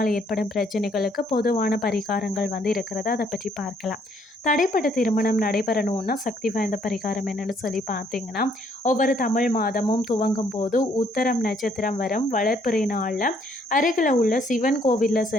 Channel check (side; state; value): both; normal; correlation 0.67